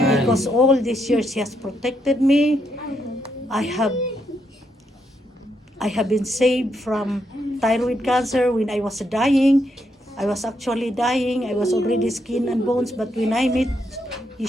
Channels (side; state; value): both; normal; correlation 0.78